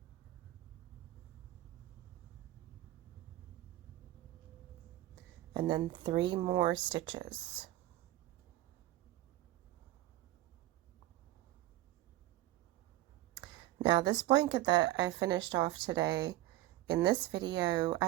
and then 3 more stitches. Now this blanket that I finished off today, in this video,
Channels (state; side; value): quieter; left; 15.9 dB